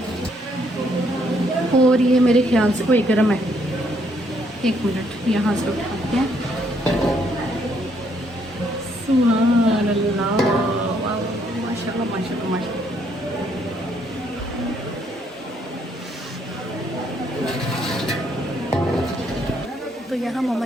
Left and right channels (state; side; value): normal; both; correlation 0.70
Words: और ये मेरे ख्याल से कोई गर्म है, एक मिनट यहाँ से उठाते हैं। सुभान अल्लाह, वाह माशाल्लाह माशाल्लाह माशाल्लाह। तो यहाँ मम्मा